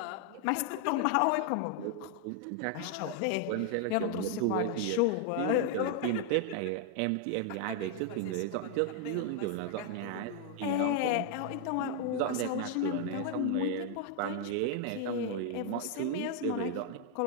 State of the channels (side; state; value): both; different; correlation 0.00